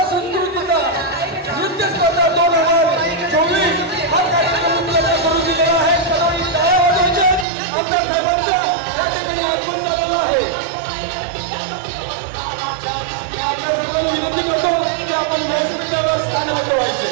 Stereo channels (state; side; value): drops out; left; at 7.5 s